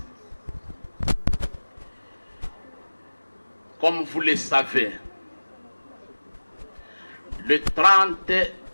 comme vous le savez, le 30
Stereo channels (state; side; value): inverted; both; correlation -1.00